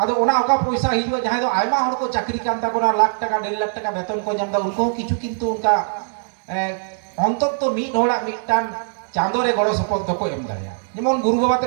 ओना ओका पैसा हिजुआ जहां दो आयमा हर को चाकरी कान ताबोना लाख टाका 1.5 लाख टाका वेतन को जामदा उनको किछु किंतु उनका अंतत तो मिट होड़ा मिटान चांदो रे गड़ो सपोर्ट तो को एम दाड़ेया जेमन गुरु बाबा ते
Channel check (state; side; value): silent; left; digital silence